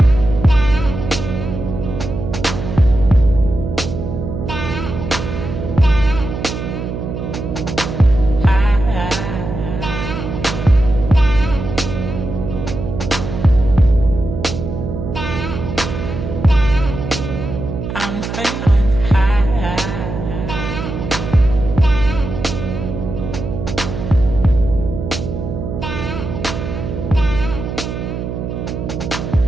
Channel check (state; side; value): noise; right; hum, 5 dB below the sound